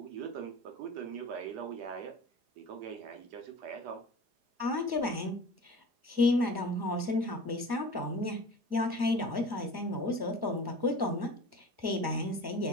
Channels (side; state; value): left; late; 4.9 ms